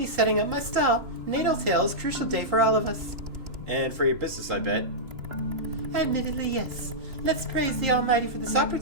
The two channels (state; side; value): late; left; 2.9 ms